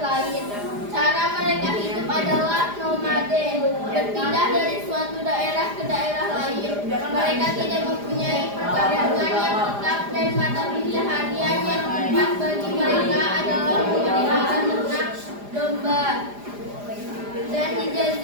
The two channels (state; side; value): late; left; 4.9 ms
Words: Cara mereka hidup adalah nomaden, berpindah dari suatu daerah ke daerah lain. Mereka tidak mempunyai perkampungan yang tetap dan mata pencaharian yang tepat bagi mereka adalah memelihara ternak domba. Dan di